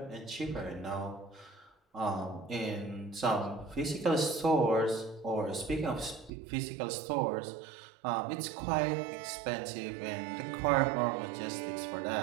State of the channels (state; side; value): drops out; left; at 6.3 s